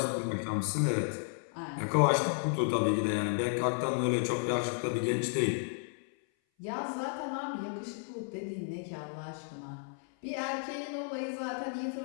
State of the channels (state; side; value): silent; right; 56 dB below the other